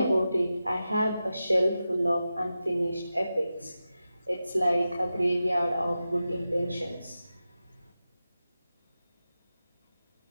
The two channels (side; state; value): both; inverted; correlation -0.92